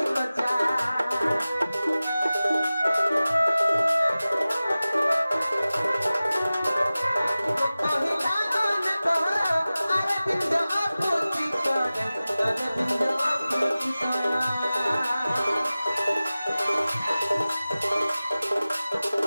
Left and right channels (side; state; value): both; inverted; correlation -0.97